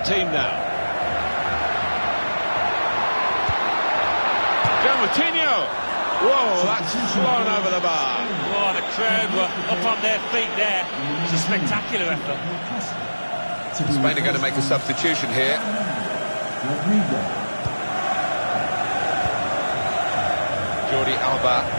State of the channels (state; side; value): inverted; both; correlation -1.00